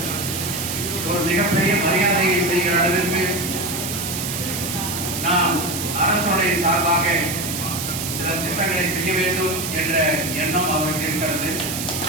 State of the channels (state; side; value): noise; right; hiss, 4 dB below the sound